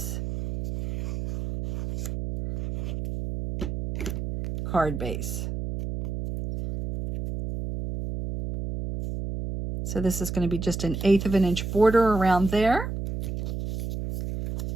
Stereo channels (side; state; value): right; noise; hum, 5 dB below the sound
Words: card base. So this is going to be just an 1/8 of an inch border around there.